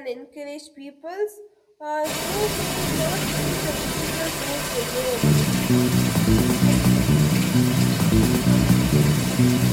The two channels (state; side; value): identical; both; correlation 1.00